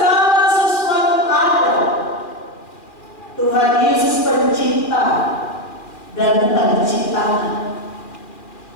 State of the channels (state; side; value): late; right; 2.4 ms